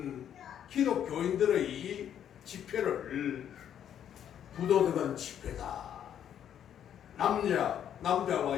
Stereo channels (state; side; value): quieter; right; 9.7 dB